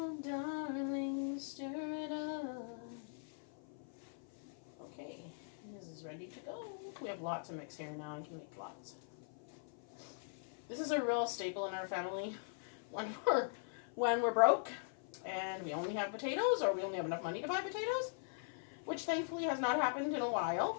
darling, stir it up. Okay, this is ready to go. We have lots of mix here now. I can make lots. This is a real staple in our family when we're broke and we only have potatoes, or we only have enough money to buy potatoes, which thankfully has not happened in a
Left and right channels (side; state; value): right; silent; 50 dB below the other